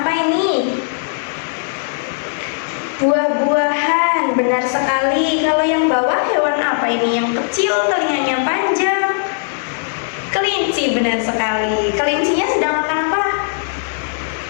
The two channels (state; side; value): silent; right; digital silence